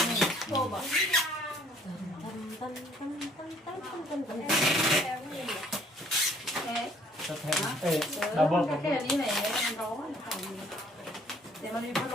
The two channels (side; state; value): both; normal; correlation 0.59